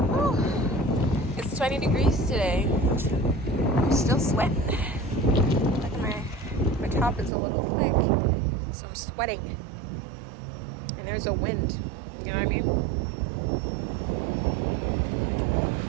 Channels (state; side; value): drops out; left; at 7.3 s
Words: Woo. It's 20 degrees today. I'm still sweating. Look at my top is a little thick, so I'm sweating. And there's a wind. You know what I mean?